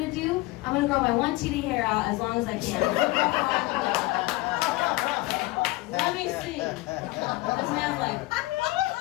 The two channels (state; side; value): quieter; right; 19.9 dB